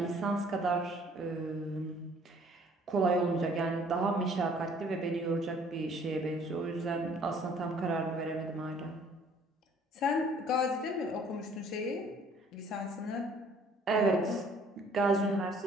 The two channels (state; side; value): normal; both; correlation 0.57